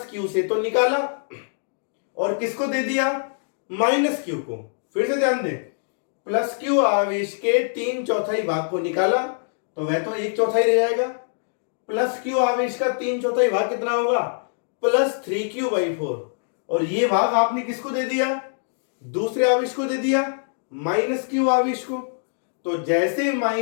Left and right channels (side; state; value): right; silent; digital silence